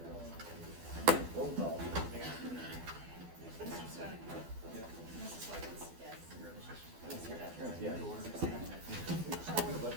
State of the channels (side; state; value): left; late; 12 ms